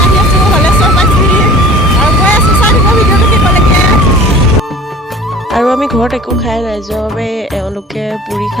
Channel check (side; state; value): both; normal; correlation 0.45